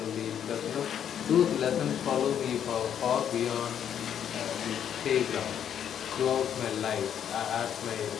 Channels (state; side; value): quieter; right; 9.2 dB